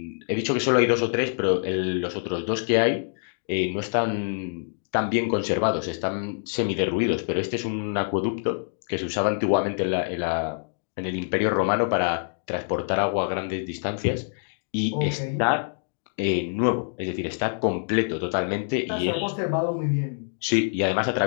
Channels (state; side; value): silent; right; digital silence